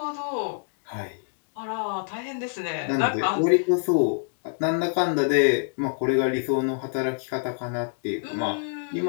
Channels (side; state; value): right; silent; digital silence